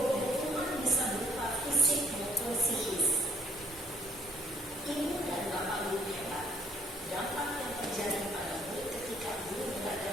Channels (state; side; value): normal; both; correlation 0.63